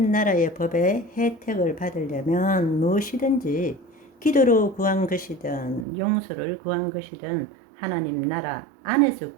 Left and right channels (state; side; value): drops out; left; at 5.9 s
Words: 나라의 법의 혜택을 받으려면 무엇이든지 기도로 구한 것이든 용서를 구한 것이든 하나님 나라 안에서